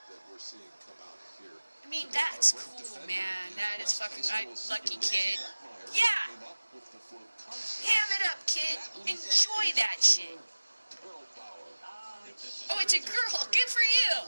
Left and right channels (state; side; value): inverted; both; correlation -1.00